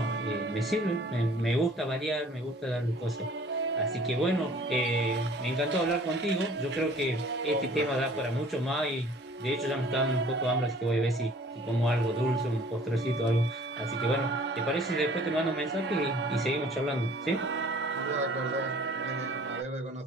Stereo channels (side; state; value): both; normal; correlation 0.52